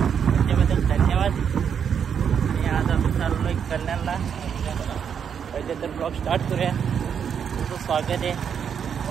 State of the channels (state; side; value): quieter; left; 7.6 dB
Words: त्याच्याबद्दल धन्यवाद. आणि आज आपण चाललोय कल्याणला. पहिले तर ब्लॉग स्टार्ट करूया. तुमचं स्वागत आहे